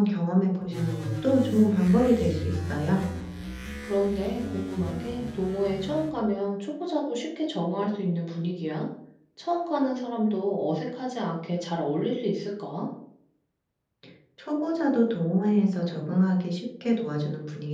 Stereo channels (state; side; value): identical; both; correlation 1.00